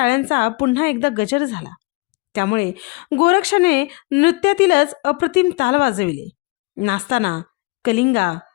पुन्हा एकदा गजर झाला. त्यामुळे गोरक्षाने नृत्यातीलच अप्रतिम ताल वाजविले. नाचताना कलिंगा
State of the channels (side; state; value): right; quieter; 26.0 dB